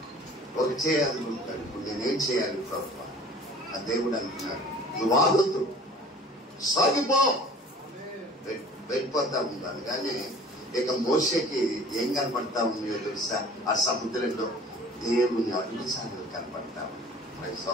ఒక చేయాలనుకుంటాడు. ఇప్పుడు నేనేం చేయాలి ప్రభువా? ఆ దేవుడు అంటున్నాడు, నువ్వు ఆగొద్దు, సాగిపో. వెళ్ళిపోతా ఉన్నాను. కానీ ఇక మోషేకి ఏం కనపడతా ఉన్నాయో తెలుసా? ఆ సముద్రంలో దేవుని అడుగుసాడలు కనపడతా ఉన్నాయి.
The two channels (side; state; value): both; normal; correlation 0.47